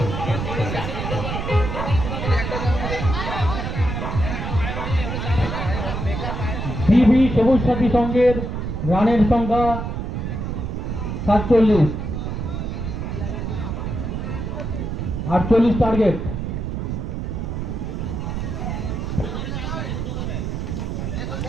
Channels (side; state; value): right; noise; rumble, 3 dB below the sound